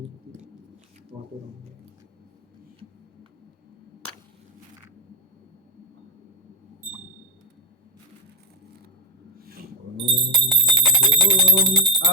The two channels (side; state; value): both; normal; correlation 0.08